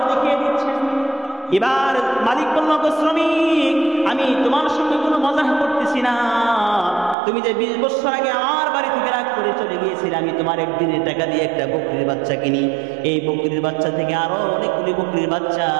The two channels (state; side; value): drops out; left; at 7.2 s